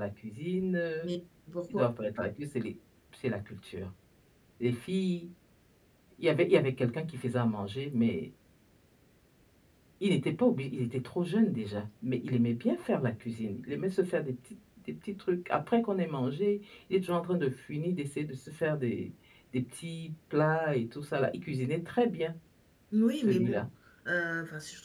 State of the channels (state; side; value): identical; both; correlation 1.00